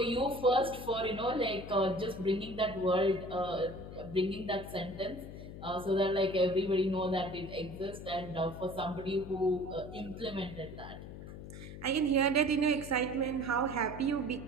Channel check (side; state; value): left; noise; hum, 12 dB below the sound